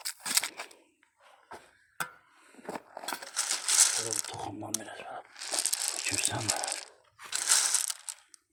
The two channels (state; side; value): identical; both; correlation 1.00